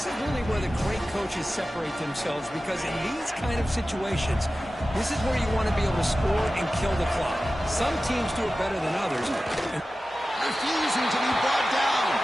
is really where the great coaches separate themselves, because in these kind of situations, this is where you want to be able to score and kill the clock. Some teams do it better than others. Refusing to be brought down.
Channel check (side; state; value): both; normal; correlation 0.95